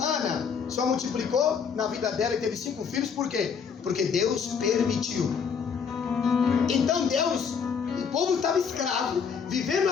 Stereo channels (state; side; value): quieter; right; 6.5 dB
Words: Ana só multiplicou na vida dela e teve 5 filhos, por quê? Porque Deus permitiu. Então Deus, o povo estava escravo, vivendo